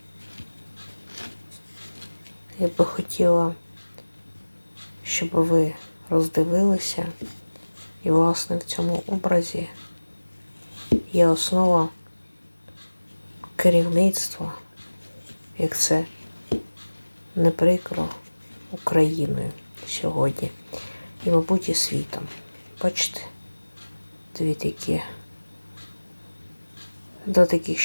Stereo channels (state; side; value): inverted; both; correlation -1.00